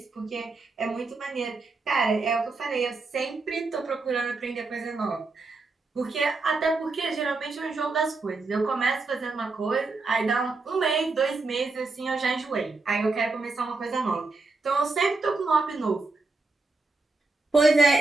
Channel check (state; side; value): quieter; left; 3.7 dB